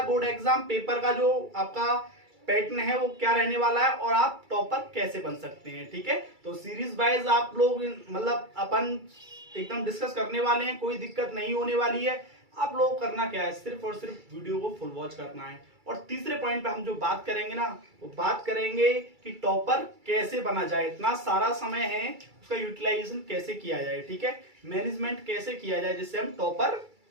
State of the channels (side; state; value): left; late; 2.3 ms